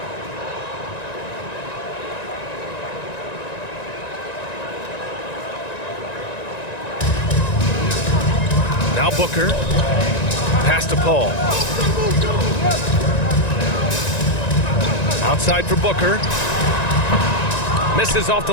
Now Booker. Pass to Paul. Outside for Booker. Misses off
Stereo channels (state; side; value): late; right; 1.9 ms